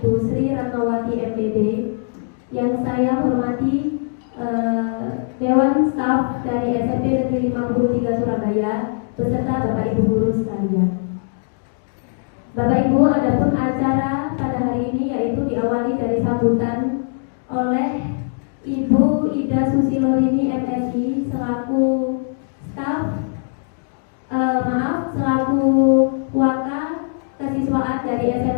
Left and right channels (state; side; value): silent; right; digital silence